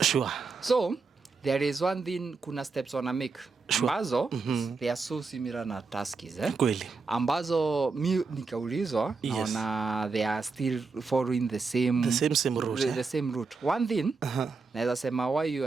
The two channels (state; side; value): quieter; left; 4.4 dB